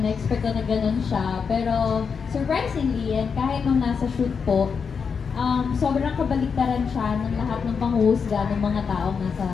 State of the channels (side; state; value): right; quieter; 5.9 dB